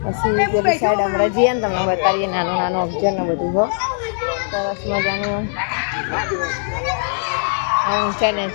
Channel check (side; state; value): right; silent; 66 dB below the other